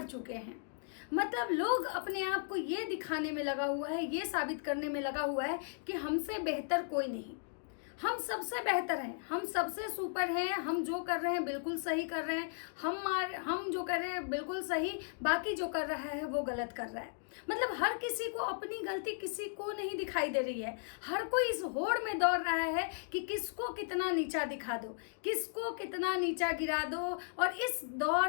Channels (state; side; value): silent; right; digital silence